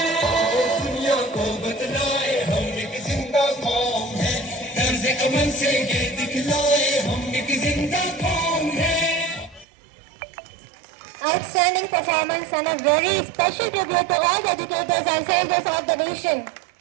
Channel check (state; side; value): drops out; left; at 9.7 s